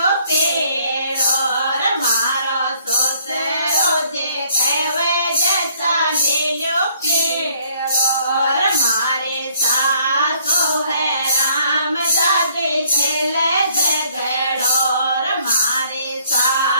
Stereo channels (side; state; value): both; inverted; correlation -0.63